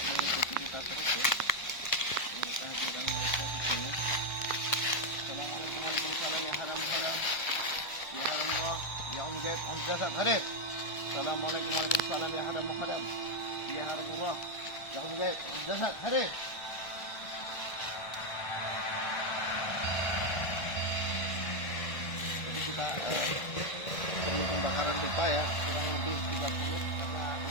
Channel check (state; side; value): late; right; 1.3 ms